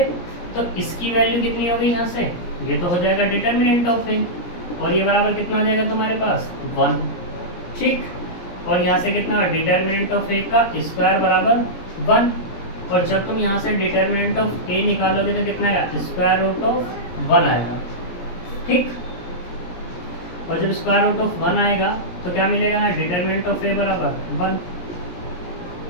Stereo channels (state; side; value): late; right; 17 ms